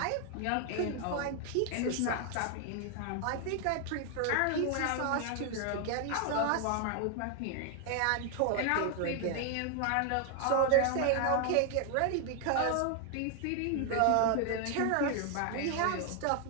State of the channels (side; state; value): both; different; correlation 0.00